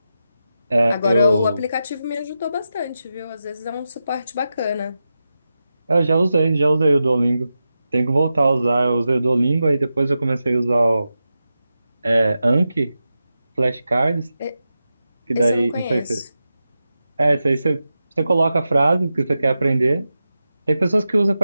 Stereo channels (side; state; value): both; inverted; correlation -0.91